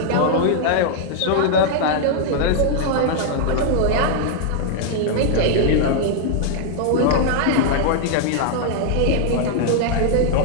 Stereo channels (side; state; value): both; different; correlation -0.01